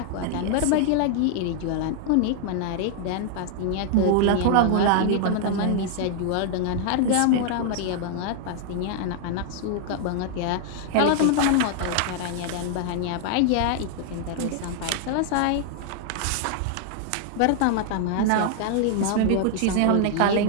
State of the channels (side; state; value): both; different; correlation 0.00